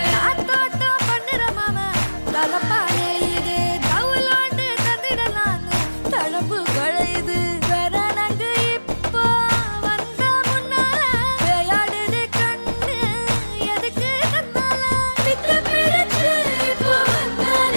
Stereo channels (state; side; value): inverted; both; correlation -1.00